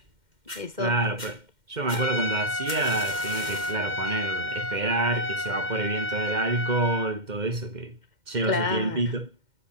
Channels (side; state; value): left; late; 2.1 ms